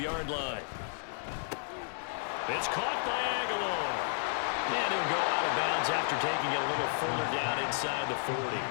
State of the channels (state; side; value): silent; right; 56 dB below the other